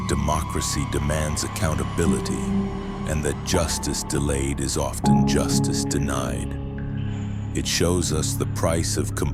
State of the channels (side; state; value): both; identical; correlation 1.00